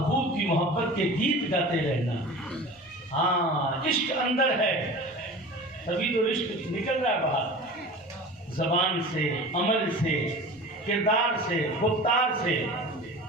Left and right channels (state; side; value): normal; both; correlation 0.36